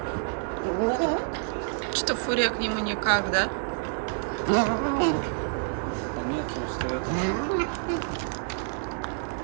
Что Фурия к нему никак, да? Нет, просто это...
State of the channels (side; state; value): left; silent; 59 dB below the other